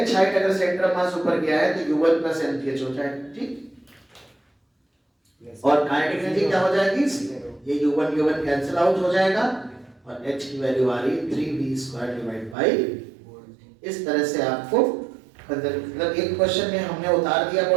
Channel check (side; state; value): left; drops out; at 12.6 s